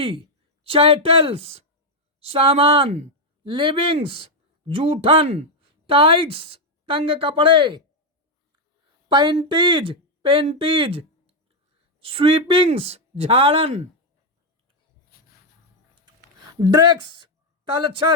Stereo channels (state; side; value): normal; both; correlation 0.02